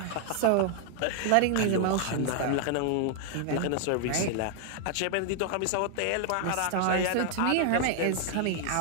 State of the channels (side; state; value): both; different; correlation 0.00